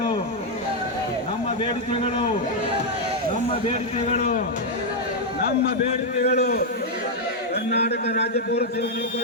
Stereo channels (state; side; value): normal; both; correlation -0.01